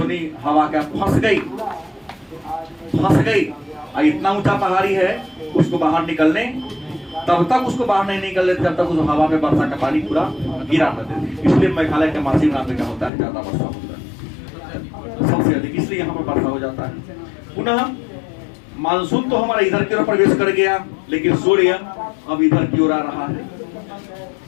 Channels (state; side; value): drops out; right; at 13.1 s